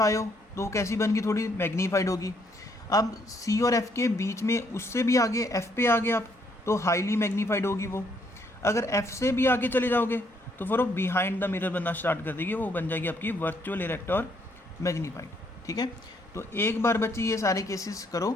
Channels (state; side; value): normal; both; correlation 0.70